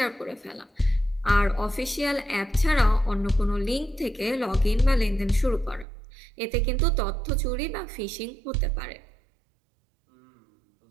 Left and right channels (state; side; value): drops out; left; at 5.9 s